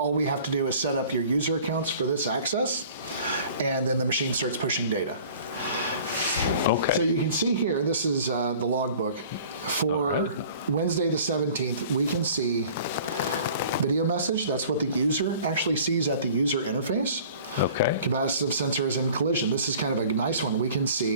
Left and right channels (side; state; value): both; inverted; correlation -0.48